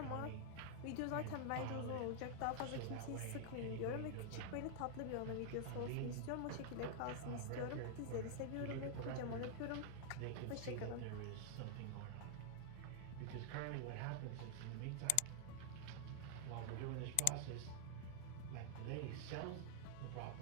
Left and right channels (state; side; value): different; both; correlation -0.01